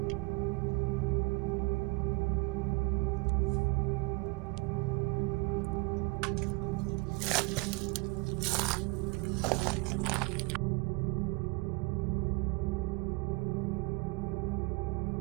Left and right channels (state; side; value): quieter; left; 28.3 dB